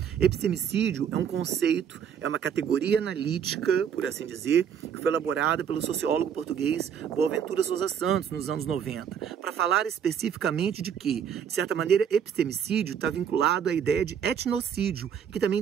Epistemicídio é um conceito, é uma categoria analítica, por assim dizer, que foi elaborada pelo sociólogo português Boaventura Sousa Santos nos anos 90, para falar especificamente de que, de certa maneira, epistemicídio está vinculado à ideia de etnocídio, que também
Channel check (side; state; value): left; quieter; 8.1 dB